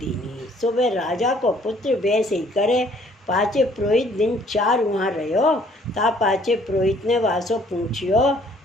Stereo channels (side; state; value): both; normal; correlation 0.60